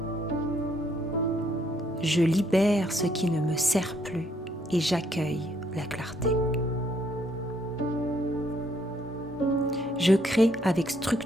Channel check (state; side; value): normal; both; correlation 0.69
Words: Je libère ce qui ne me sert plus et j'accueille la clarté. Je crée avec